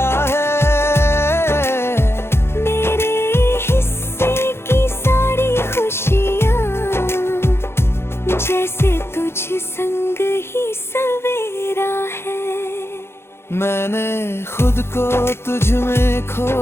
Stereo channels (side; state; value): right; late; 0.12 ms